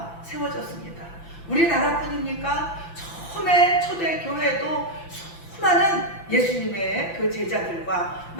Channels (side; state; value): right; late; 5.9 ms